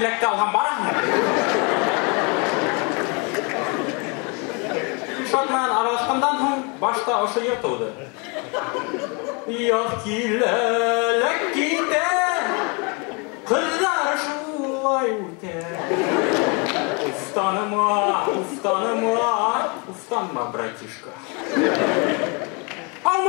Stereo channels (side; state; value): right; quieter; 32.5 dB